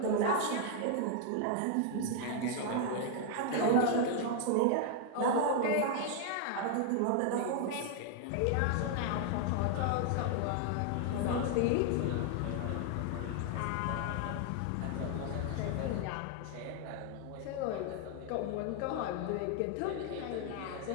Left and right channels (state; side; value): different; both; correlation 0.00